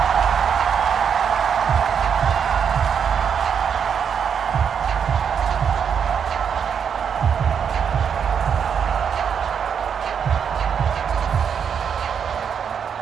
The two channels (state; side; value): quieter; left; 7.4 dB